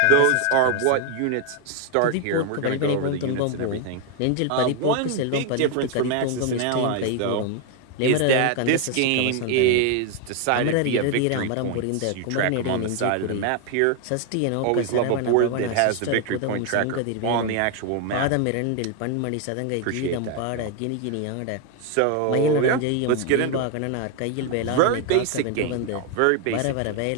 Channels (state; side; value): different; both; correlation 0.01